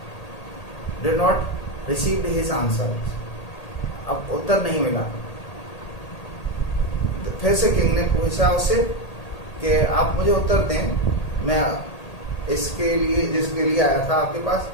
did not receive his answer, अब उत्तर नहीं मिला। फिर से किंग ने पूछा उससे कि आप मुझे उत्तर दें, मैं इसके लिए जिसके लिए आया था आपके पास,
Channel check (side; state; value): right; late; 1.8 ms